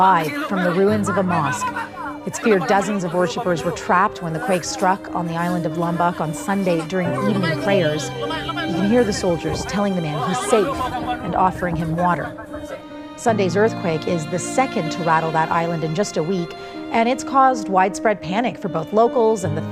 from the ruins of a mosque. It's feared dozens of worshippers were trapped when the quake struck on the island of Lombok on Sunday during evening prayers. You can hear the soldiers telling the man he's safe and offering him water. Sunday's earthquake is the second to rattle that island in just a week, and it's caused widespread panic for both locals and the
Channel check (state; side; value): identical; both; correlation 1.00